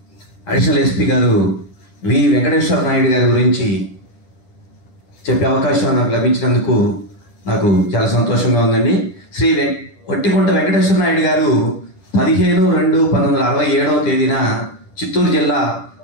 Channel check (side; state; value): right; late; 10 ms